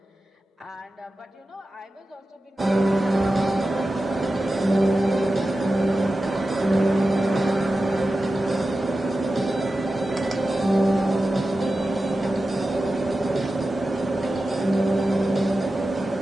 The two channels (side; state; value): both; normal; correlation 0.93